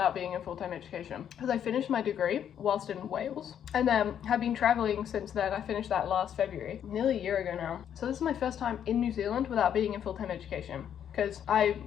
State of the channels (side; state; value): right; quieter; 9.3 dB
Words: being in full-time education, because I finished my degree whilst in Wales and then have been traveling since then. I finished that last February, nearly a year ago now. So this is my first time in New Zealand without being in full-time education, because I